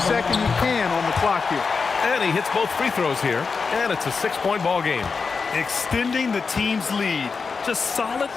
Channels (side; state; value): right; quieter; 4.9 dB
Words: second you can on the clock here. And he hits both free throws here. And it's a 6-point ball game. Extending the team's lead. Just solid